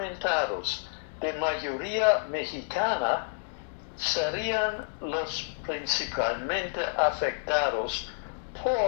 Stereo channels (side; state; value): right; silent; 58 dB below the other